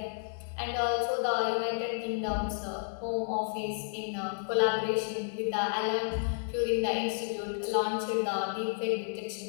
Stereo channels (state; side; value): silent; right; digital silence